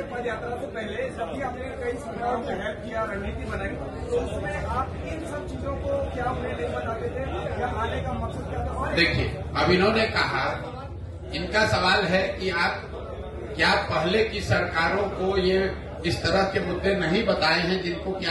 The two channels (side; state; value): both; identical; correlation 1.00